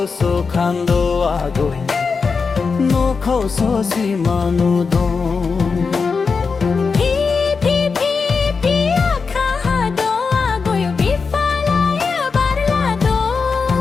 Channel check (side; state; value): right; quieter; 5.0 dB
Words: খান্দো আগৈ নখৌ সো সিমানো দম